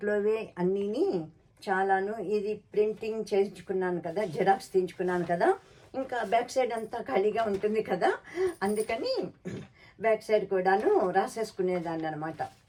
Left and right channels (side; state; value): both; identical; correlation 1.00